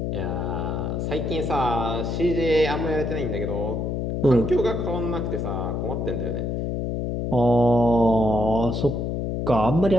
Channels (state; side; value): noise; left; hum, 1 dB below the sound